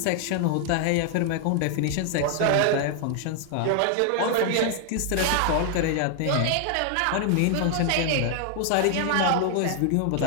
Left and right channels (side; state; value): both; different; correlation 0.00